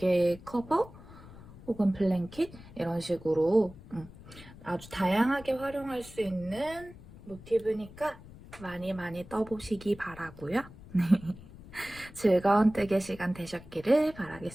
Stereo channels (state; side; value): noise; left; rumble, 18 dB below the sound